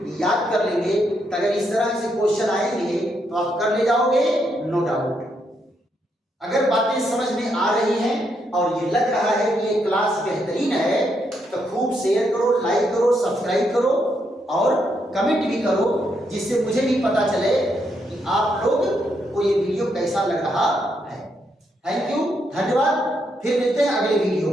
याद कर लेंगे तो अगर इस तरह से क्वेश्चन आएंगे तो आप कर ले जाओगे नो डाउट। अगर बातें समझ में आ रही हैं और ये लग रहा है कि ये क्लास बेहतरीन है तो खूब शेयर करो लाइक करो सब्सक्राइब करो और कमेंट भी करो जिससे मुझे भी पता चले कि आप लोग को ये वीडियो कैसा लग रहा है। थैंक यू धन्यवाद। फिर मिलते हैं अगले वीडियो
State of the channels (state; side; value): normal; both; correlation 0.78